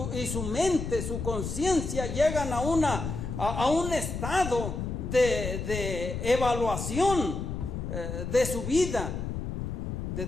su mente, su conciencia llegan a un estado de evaluación de su vida, de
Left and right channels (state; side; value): noise; left; rumble, 4 dB below the sound